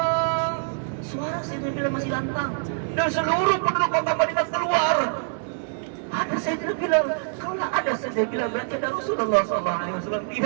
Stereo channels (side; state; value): left; silent; 62 dB below the other